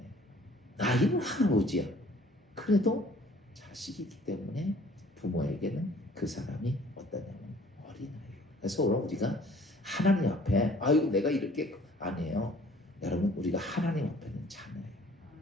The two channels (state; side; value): normal; both; correlation 0.55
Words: 나이는 할아버지야. 그래도 자식이기 때문에 부모에게는 그 사람이 어떠냐면 어린아이예요. 그래서 오늘 우리가 하나님 앞에 아이고 내가 이렇게 아니에요. 여러분 우리가 하나님 앞에는 자녀예요.